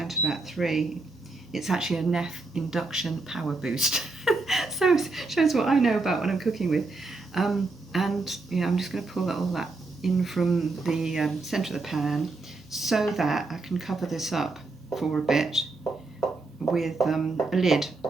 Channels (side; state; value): left; quieter; 3.5 dB